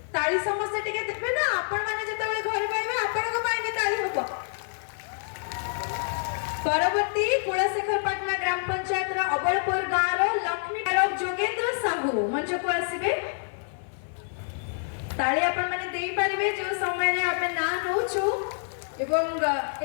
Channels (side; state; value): right; silent; 60 dB below the other